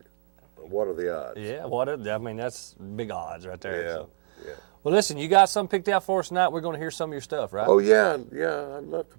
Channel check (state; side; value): silent; left; 58 dB below the other